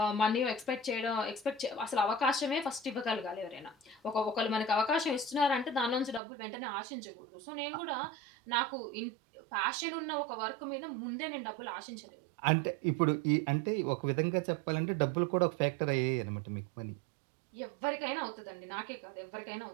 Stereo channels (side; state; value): left; drops out; at 6.2 s